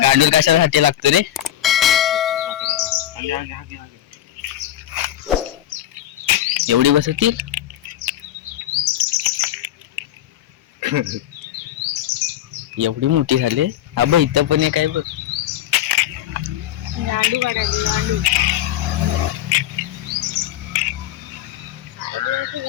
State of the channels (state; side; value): quieter; right; 12.3 dB